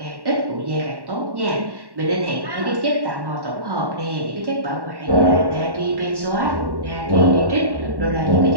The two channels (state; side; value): late; left; 1.1 ms